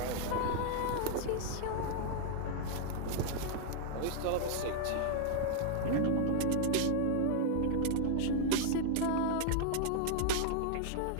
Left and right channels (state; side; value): different; both; correlation 0.00